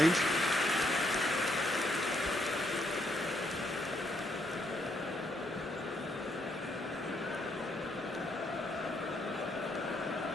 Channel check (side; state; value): both; normal; correlation 0.73